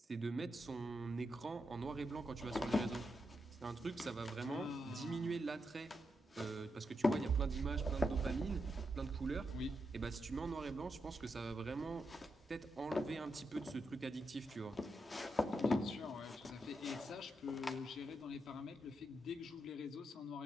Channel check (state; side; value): normal; both; correlation 0.84